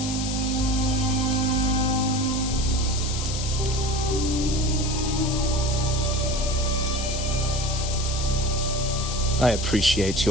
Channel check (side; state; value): left; noise; hiss, 6 dB below the sound